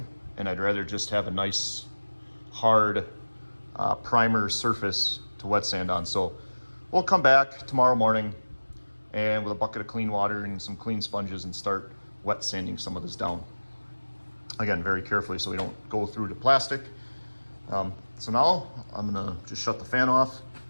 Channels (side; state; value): both; inverted; correlation -1.00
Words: and I'd rather just have a nice hard primer surface to wet sand on. So we'll come back tomorrow morning and with a bucket of clean water and some clean sponges and start wet sanding some of this down. Again, very carefully so we don't go through the plastic. So now I'm gonna just shut the fan off.